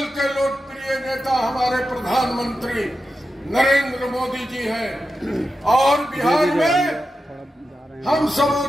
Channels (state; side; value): normal; both; correlation 0.90